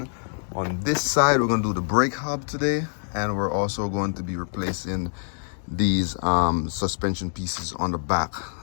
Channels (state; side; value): silent; right; digital silence